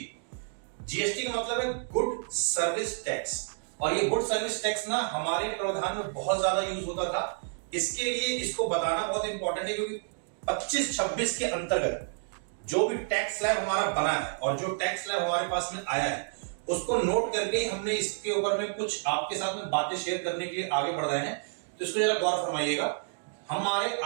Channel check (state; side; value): silent; left; digital silence